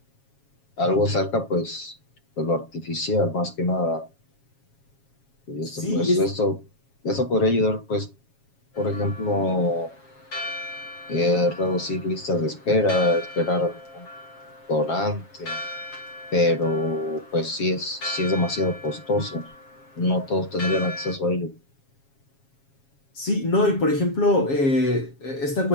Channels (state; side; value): late; right; 7.3 ms